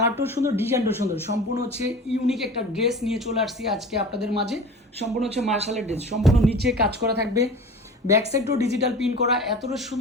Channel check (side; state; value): both; normal; correlation 0.37